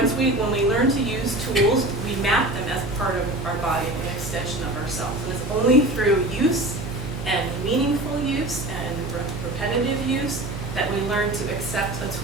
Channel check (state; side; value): noise; right; hum, 7 dB below the sound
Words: we learn to use tools, we map them as part of our body, an extension of ourselves. And it's only through use and meaningful use and repetitive use that we learn to accept a